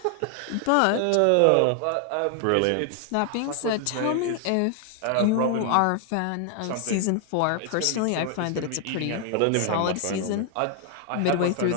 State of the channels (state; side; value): different; both; correlation 0.00